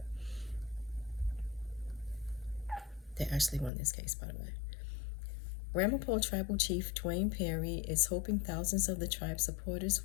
They actually won this case, by the way. Ramapough Tribal Chief Dwayne Perry is hoping thousands of the tribe's supporters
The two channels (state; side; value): drops out; right; at 3.7 s